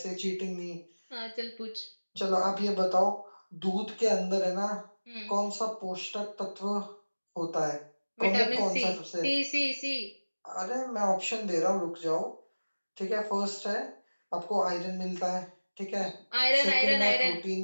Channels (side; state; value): both; inverted; correlation -1.00